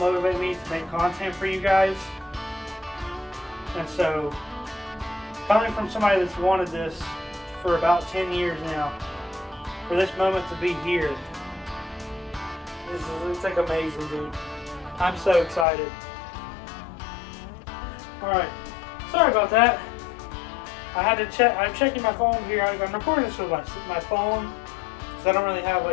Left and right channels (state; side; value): drops out; right; at 15.7 s